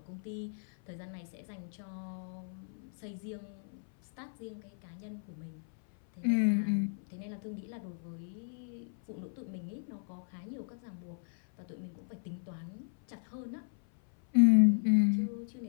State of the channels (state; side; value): silent; right; 54 dB below the other